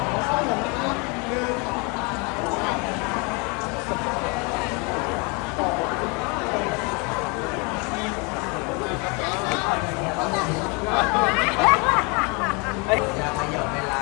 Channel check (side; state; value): right; quieter; 30.6 dB